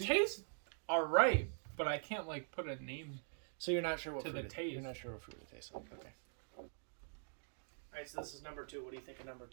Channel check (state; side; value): silent; left; digital silence